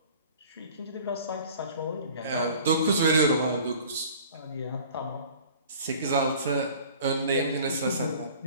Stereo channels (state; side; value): inverted; both; correlation -0.47